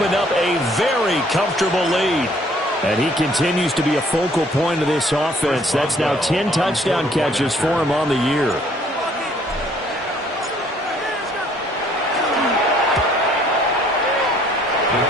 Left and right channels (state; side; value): normal; both; correlation 0.61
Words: up a very comfortable lead. And he continues to be a focal point of this offense. That's now 10 touchdown catches for him on the year.